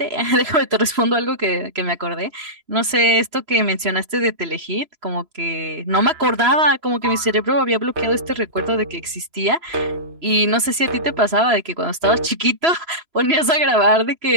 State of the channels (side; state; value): left; late; 3.0 ms